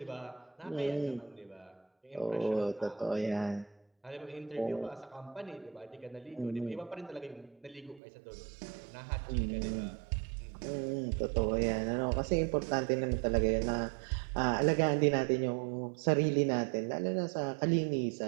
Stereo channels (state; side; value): drops out; left; at 8.0 s